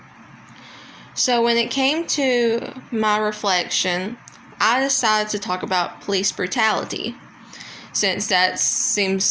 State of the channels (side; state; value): both; identical; correlation 1.00